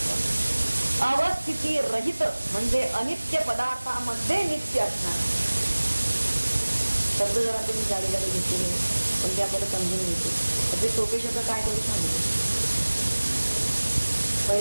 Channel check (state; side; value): inverted; both; correlation -1.00